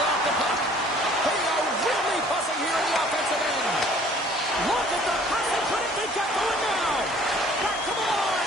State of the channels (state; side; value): normal; both; correlation 0.54